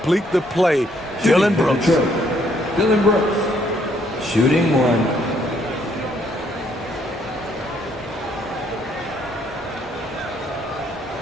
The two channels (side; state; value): both; normal; correlation 0.68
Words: the play. Dillon Brooks. Dillon Brooks, shooting 1.